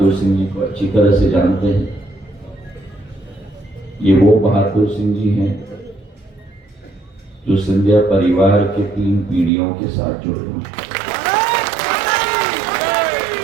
सिंह जी को अच्छी तरह से जानते हैं। ये वो बहादुर सिंह जी हैं जो सिंधिया परिवार के 3 पीढ़ियों के साथ जुड़े हुए हैं।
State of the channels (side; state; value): left; drops out; at 9.5 s